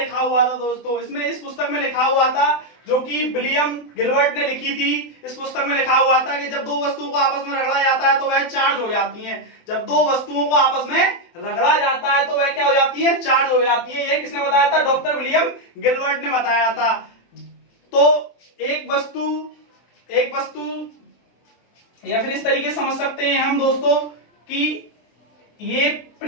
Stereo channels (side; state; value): right; late; 24 ms